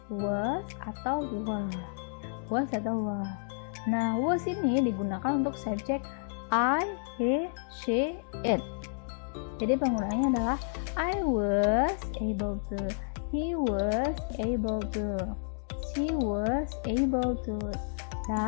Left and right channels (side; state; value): right; silent; digital silence